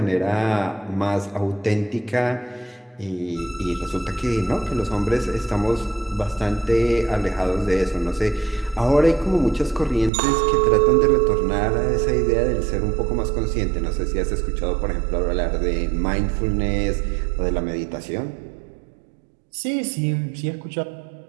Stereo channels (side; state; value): left; drops out; at 10.1 s